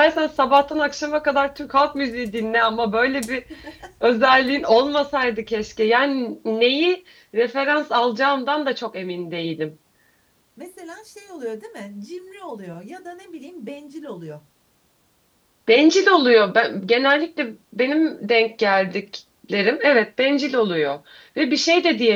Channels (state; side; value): identical; both; correlation 1.00